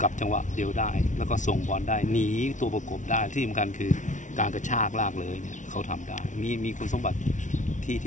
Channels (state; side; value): late; right; 0.37 ms